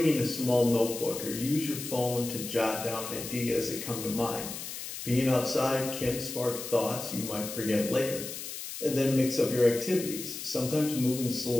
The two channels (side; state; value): left; noise; hiss, 8 dB below the sound